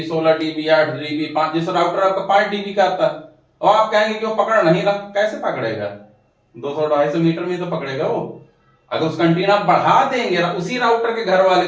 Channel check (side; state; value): both; identical; correlation 1.00